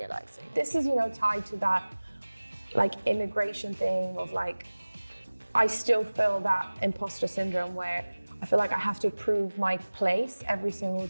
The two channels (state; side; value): inverted; both; correlation -1.00